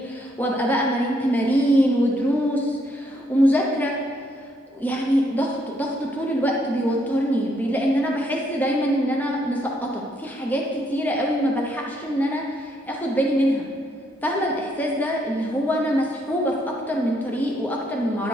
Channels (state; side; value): normal; both; correlation 0.72